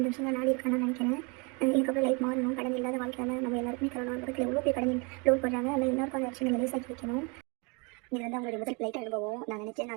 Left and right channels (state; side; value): quieter; left; 31.4 dB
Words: விஷயங்கள் நாடி இருக்கான்னு நினைக்கிறேன். இதுக்கப்புறம் லைஃப் மாறணும். கடன் இல்லாத வாழ்க்கையால் நம்ம எல்லாருக்குமே தரணும். பக்கத்தில் எவ்வளோ பேர் கடன் லோன் பண்ணுறாங்க. அதில் எல்லாருக்கும் அந்த விஷயங்களை லேசாக்கி வைக்கணும். இது வந்து அவங்களுடைய முதல் ஃப்ளைட் அனுபவம். நான் நினச்சேன்